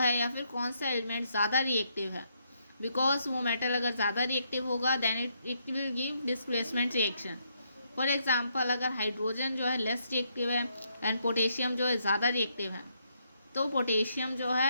या फिर कौन सा एलिमेंट ज़्यादा रिएक्टिव है. बिकॉज वो मेटल अगर ज़्यादा रिएक्टिव होगा then it will give displacement reaction. For example अगर हाइड्रोजन जो है लेस रिएक्टिव है एंड पोटेशियम जो है ज़्यादा रिएक्टिव है, तो पोटेशियम जो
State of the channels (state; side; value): inverted; both; correlation -0.76